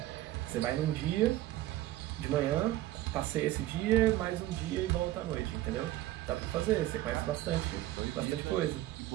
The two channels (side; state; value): left; quieter; 15.2 dB